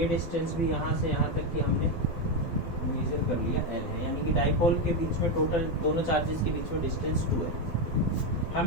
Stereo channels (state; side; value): late; right; 12 ms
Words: डिस्टेंस भी यहां से यहां तक की हमने मेजर कर लिया, L है। यानी कि डाइपोल के बीच में टोटल दोनों चार्जेस के बीच में डिस्टेंस 2 है।